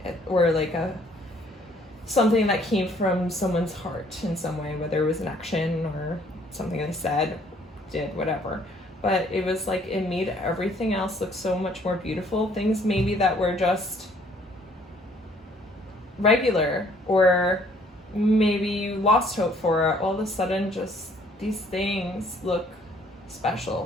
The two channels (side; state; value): both; normal; correlation 0.61